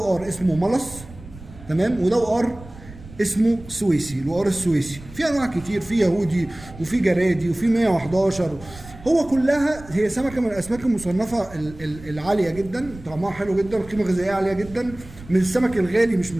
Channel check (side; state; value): right; noise; rumble, 18 dB below the sound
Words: اسمه ملص، تمام، وده وقار اسمه سويسي، الوقار السويسي. في انواع كتير، في يهودي وفي جرادي وفي 111. هو كلها هي سمكه من الاسماك المصنفه العاليه جدا، طعمها حلو جدا، قيمه غذائيه عاليه جدا، من السمك الغالي مش من